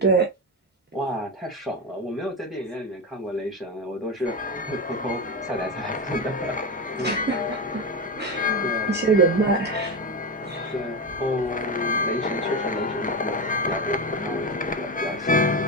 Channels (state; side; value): normal; both; correlation 0.16